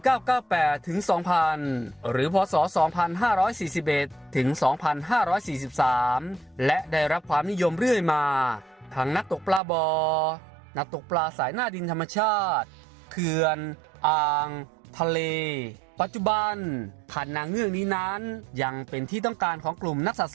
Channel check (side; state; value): left; drops out; at 9.6 s